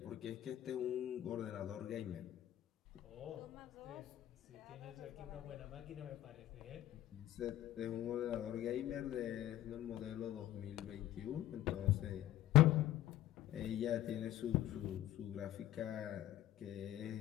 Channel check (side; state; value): right; quieter; 13.7 dB